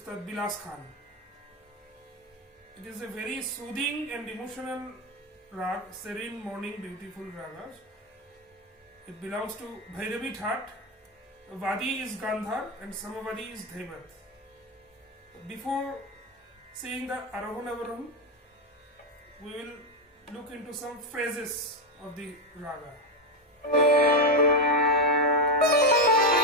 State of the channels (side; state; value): both; normal; correlation 0.09